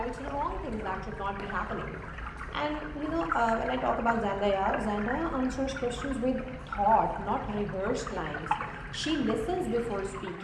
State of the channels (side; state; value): both; identical; correlation 1.00